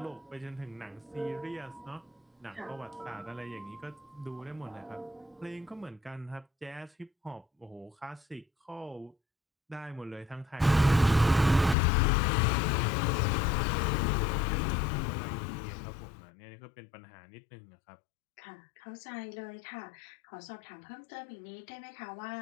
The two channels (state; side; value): drops out; right; at 11.8 s